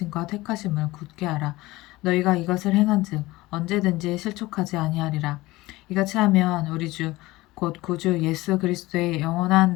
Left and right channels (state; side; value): quieter; right; 19.4 dB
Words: 택하심을 굳게 하라. 너희가 이것을 행한즉 언제든지 실족하지 아니하리라. 이같이 하면 우리 주 곧 구주 예수 그리스도의 영원한